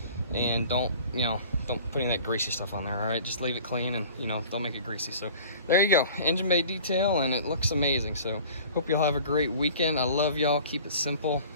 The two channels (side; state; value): both; inverted; correlation -0.45